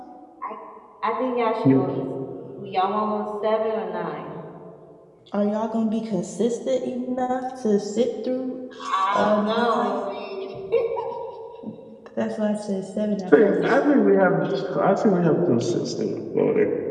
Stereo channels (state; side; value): identical; both; correlation 1.00